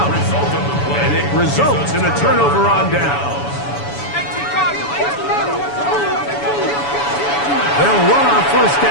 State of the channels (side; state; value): right; late; 7.0 ms